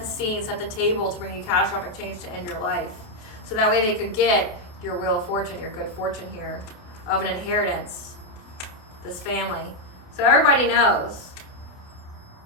scene, set the table to bring you catastrophic change to end your life. So that way they could get your wheel of fortune, your good fortune here, of an inheritance, this family. So everybody knows.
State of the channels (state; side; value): late; right; 28 ms